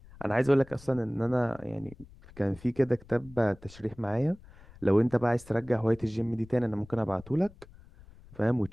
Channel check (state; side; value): noise; left; rumble, 22 dB below the sound